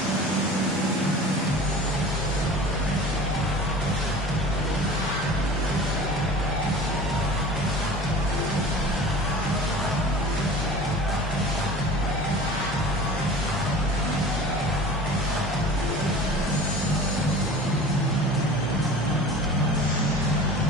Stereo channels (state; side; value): normal; both; correlation 0.40